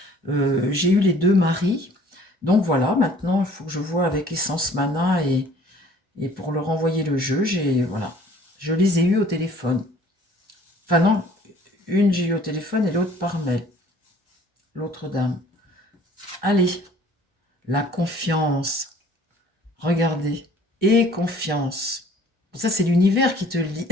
J'ai eu les deux maris. Donc voilà, maintenant, il faut que je vois avec Essence Mana et pour leur envoyer le jeu, voilà, je les ai eus au téléphone. Enfin non, une j'ai eu au téléphone et l'autre par mail. L'autre dame. Allez, la confiance. Regardez. Et confiance. Ça, c'est l'univers qui te le dit.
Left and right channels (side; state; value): both; normal; correlation 0.54